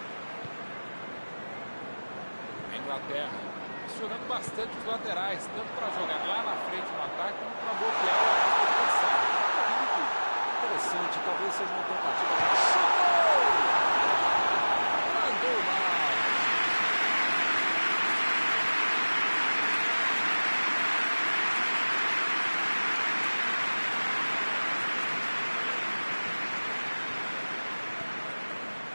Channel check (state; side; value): inverted; both; correlation -1.00